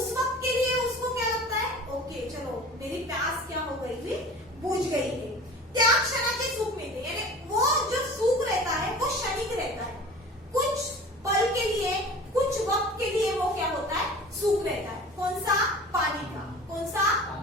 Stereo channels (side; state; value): both; normal; correlation 0.40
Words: वक्त के लिए उसको क्या लगता है? ओके चलो मेरी प्यास क्या हो गई थी, बुझ गई है। त्या क्षणाचे सुख मिलते, यानी वो जो सुख रहता है वो क्षणिक रहता है, कुछ पल के लिए, कुछ वक्त के लिए वो क्या होता है? सुख रहता है। कौन सा? पानी का। कौन सा?